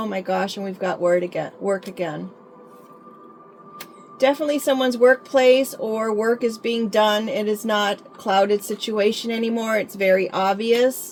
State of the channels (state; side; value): identical; both; correlation 1.00